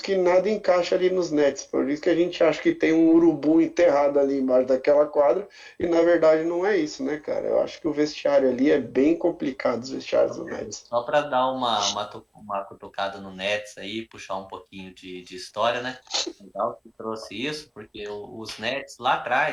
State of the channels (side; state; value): both; identical; correlation 1.00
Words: nada encaixa ali nos Nets. Por isso que a gente acha que tem um urubu enterrado ali embaixo daquela quadra, e na verdade não é isso, né, cara? Eu acho que o vestiário ali é bem complicado, os vestiários do Nets. só para dar uma cutucada no Nets aí, puxar um pouquinho de história, né? Legal que trouxe isso, porque os Nets lá